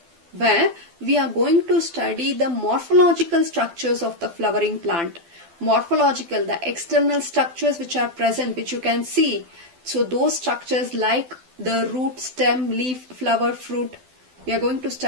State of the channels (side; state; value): left; late; 12 ms